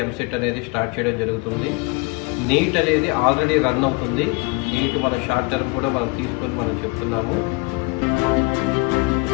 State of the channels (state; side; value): quieter; right; 28.4 dB